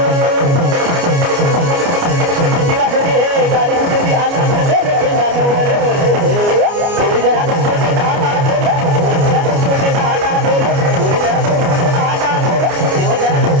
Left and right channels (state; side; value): late; left; 29 ms